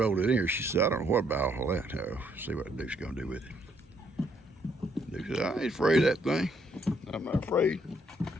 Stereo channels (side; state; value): both; normal; correlation 0.70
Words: it in here, she said, I don't know what about all that. Oh, see what Duke's gonna do with it. Duke said, I ain't afraid of that thing. I'm not afraid.